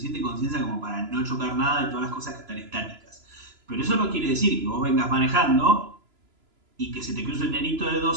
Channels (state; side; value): late; left; 3.0 ms